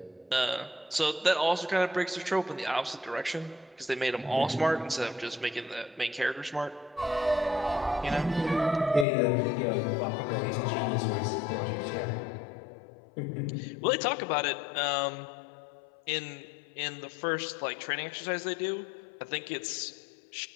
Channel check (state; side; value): drops out; right; at 9.1 s